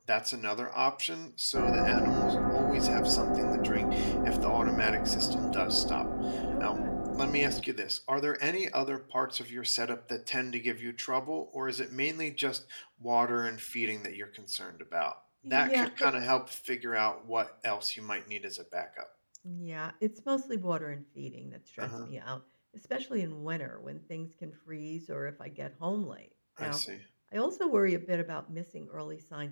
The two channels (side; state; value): both; inverted; correlation -1.00